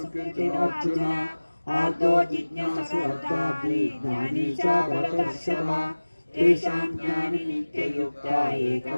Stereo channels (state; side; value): inverted; both; correlation -1.00